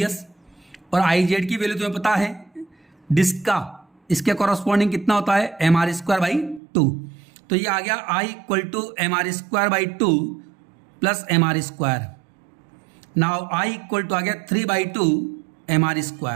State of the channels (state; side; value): drops out; left; at 6.6 s